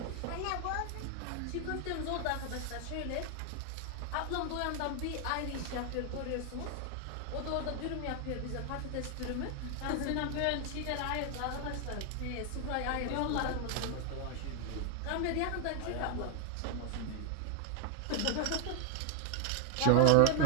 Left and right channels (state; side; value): different; both; correlation 0.00